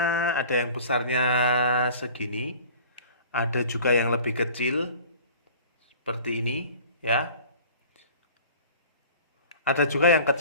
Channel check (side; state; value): both; inverted; correlation -0.45